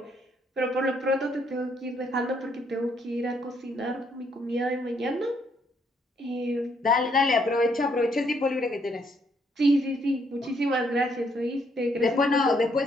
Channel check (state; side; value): normal; both; correlation 0.71